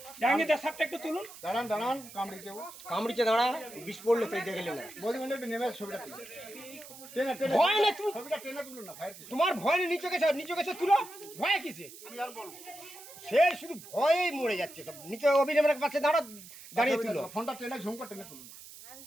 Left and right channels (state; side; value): noise; right; hiss, 16 dB below the sound